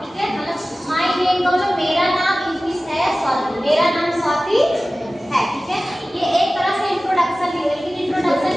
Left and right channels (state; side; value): normal; both; correlation 0.97